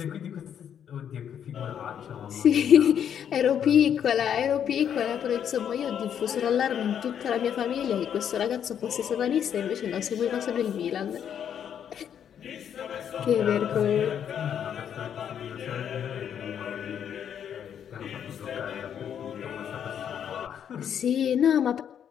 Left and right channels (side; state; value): right; quieter; 8.8 dB